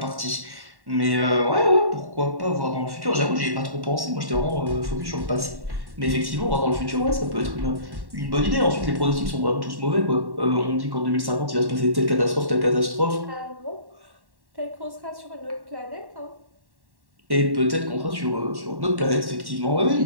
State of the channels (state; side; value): late; left; 1.1 ms